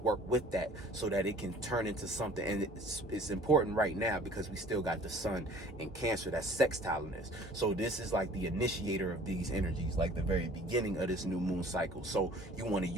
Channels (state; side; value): normal; both; correlation 0.50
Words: with that so that it can turn into something. And it's important right now because we still got the sun in Cancer that's sextiling this. So this is like the initiator of these energies, like the very beginning of this new moon cycle. So you want to